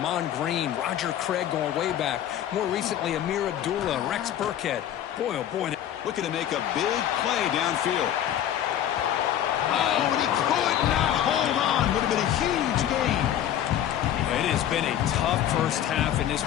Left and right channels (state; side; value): quieter; right; 11.0 dB